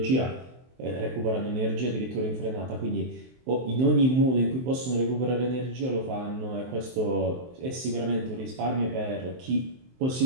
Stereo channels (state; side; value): late; left; 23 ms